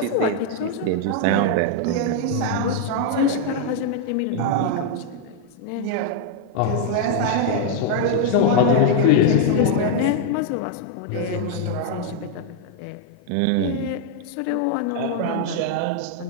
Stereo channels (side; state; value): both; different; correlation 0.00